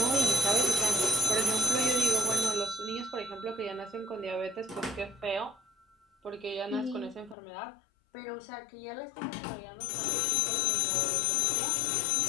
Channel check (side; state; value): right; drops out; at 7.4 s